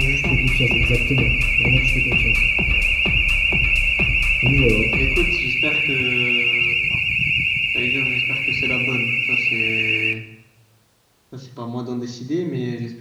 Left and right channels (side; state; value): both; identical; correlation 1.00